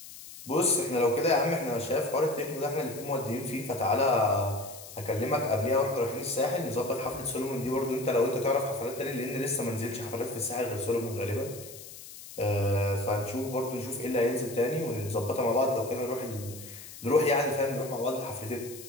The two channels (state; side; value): noise; left; hiss, 15 dB below the sound